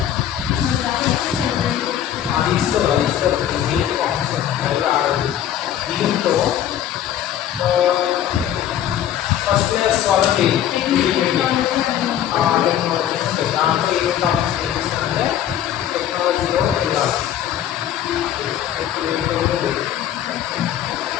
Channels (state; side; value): quieter; right; 10.8 dB